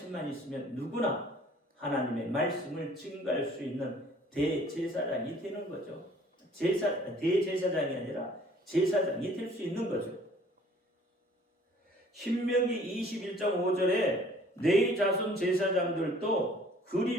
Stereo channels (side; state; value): both; normal; correlation 0.55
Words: 있으면 누구나 하나님의 말씀을 증거할 수 있는 대제사장이 되는 거죠. 대제사장이 아니라 제사장이 될 수 있는 거죠. 신명기 21장 5절에 내 자손 제사장들도